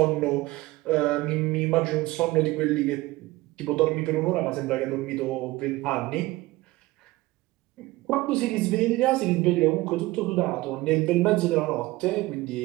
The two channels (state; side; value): quieter; left; 19.4 dB